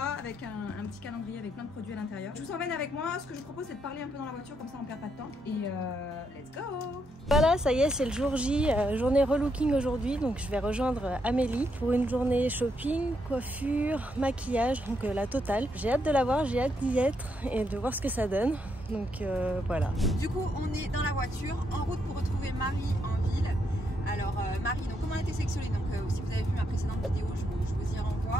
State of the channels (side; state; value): both; normal; correlation 0.78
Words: avec un petit calendrier avec plein de produits à l'intérieur. Je vous emmène avec moi. Ce que je vous propose, c'est de parler un peu dans la voiture, comme ça on perd pas de temps. Et let's go! Voilà, ça y est, c'est le jour J, journée relooking aujourd'hui. Donc je vais rejoindre Amélie pour une journée shopping, coiffure, maquillage, donc la totale. J'ai hâte de la voir, j'ai hâte d'y être et de voir ce que ça donne. Donc voilà. Du coup, on est dans la voiture, en route pour retrouver Marie en ville. Alors Marie, donc comment elle a été sélectionnée? Donc si vous avez vu ma précédente vidéo, je vous y